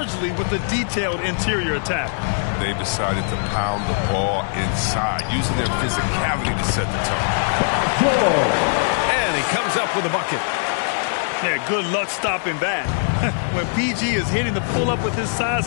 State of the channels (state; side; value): silent; right; digital silence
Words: with a detailed interior attack. They decided to pound the ball inside, using their physicality to set the tone. And he comes up with a bucket. Yeah, good luck stopping that. When PG is hitting the pull-up with his size